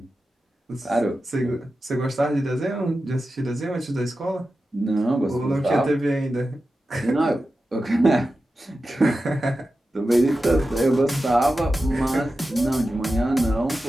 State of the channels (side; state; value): both; normal; correlation 0.92